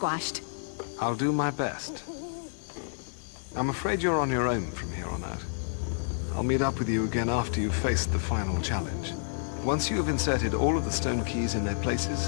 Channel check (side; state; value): right; silent; digital silence